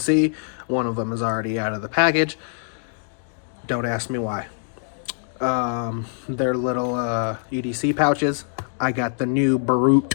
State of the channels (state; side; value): silent; right; digital silence